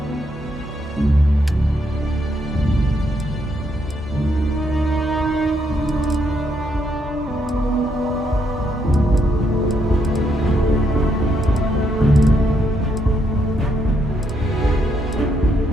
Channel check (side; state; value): both; normal; correlation 0.76